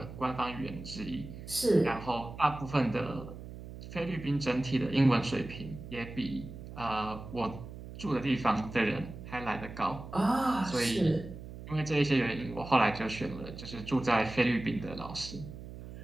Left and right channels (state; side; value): noise; right; hum, 12 dB below the sound